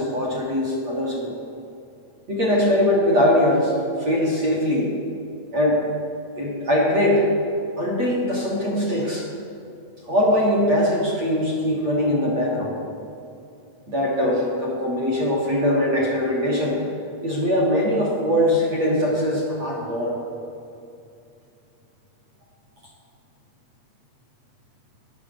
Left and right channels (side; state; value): left; late; 8.4 ms